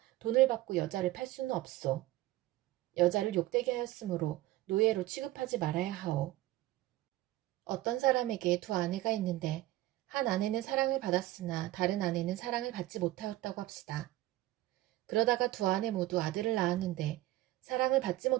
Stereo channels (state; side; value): quieter; left; 16.7 dB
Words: 돈을 받고 여자를 팔 수는 없소. 여자를 욕되게 하였으므로 노예로 취급하지 말아야 하오. 어떤 사람에게 두 아내가 있는데 한 아내는 사랑을 받았으나 다른 아내는 사랑을 받지 못하였다고 합시다. 그러다가 두 아내 모두 아들을 낳았는데 사랑을 받지